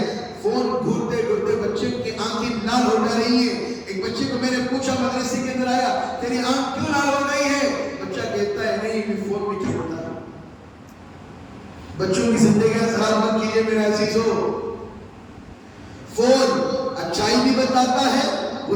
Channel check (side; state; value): both; identical; correlation 1.00